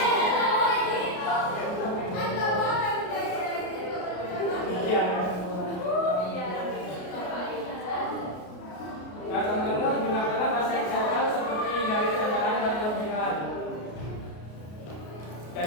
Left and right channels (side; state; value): right; late; 33 ms